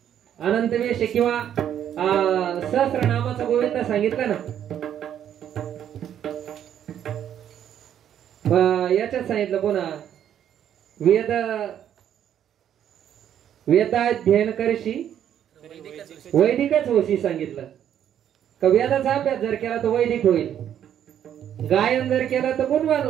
अनंत वेश किंवा सहस्रनामाचा गोविंद सांगितलं ना. याच्यात सांगितलं पुन्हा वेद वेदाध्ययन करशी वैदिकच होशी सांगितलं. का वेदाचा अभ्यास जर केला तर वैदिक होईल, गायन जर केलं तर गुणवान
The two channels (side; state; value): left; quieter; 10.0 dB